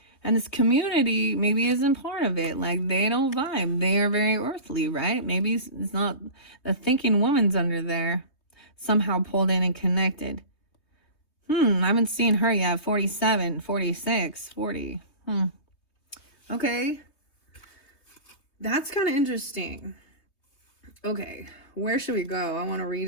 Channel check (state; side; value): late; right; 3.2 ms